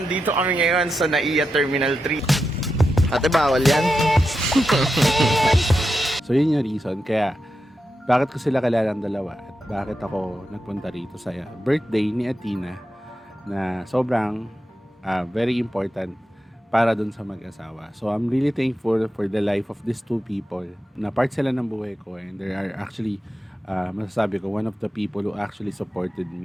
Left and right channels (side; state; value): both; normal; correlation 0.88